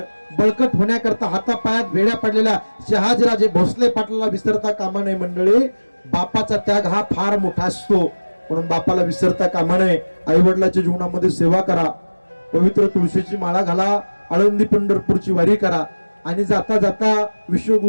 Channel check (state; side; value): inverted; both; correlation -1.00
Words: बळकट होण्याकरता हातापायात वेड्या पडलेल्या शहाजीराजे भोसले पाटलाला विसरता कामा नये. मंडळी, बापाचा त्याग हा फार मोठा असतो, म्हणून बापाला विसरता कामा नये. आई वडिलांच्या जीवनामध्ये सेवा करा, पवित्र तुळशीची माळा घाला, आळंदी पंढरपूरची वारी करा, आणि जाता जाता